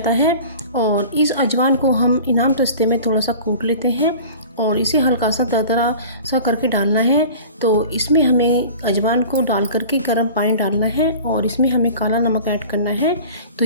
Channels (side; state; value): both; inverted; correlation -0.41